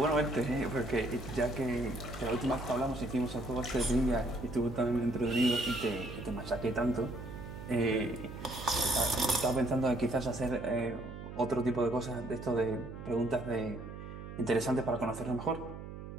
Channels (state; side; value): noise; right; hum, 11 dB below the sound